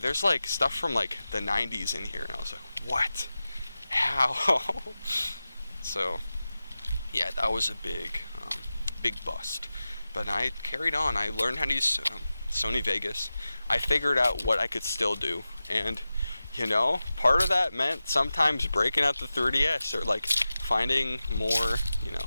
like, stuff from, like, the 90s in here. And I was like, what? How? So, yeah, that was a big bust. But I carried on. I learned how to use Sony Vegas. I figured out what I could still do, and part of that meant sometimes breaking out the 3DS, or like finding more,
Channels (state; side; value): inverted; both; correlation -0.95